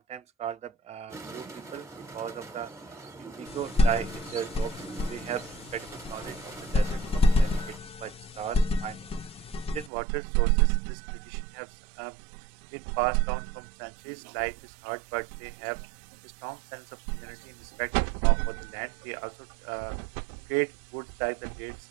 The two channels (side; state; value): left; drops out; at 9.9 s